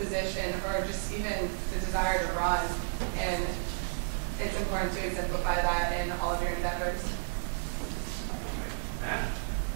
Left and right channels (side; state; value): left; silent; digital silence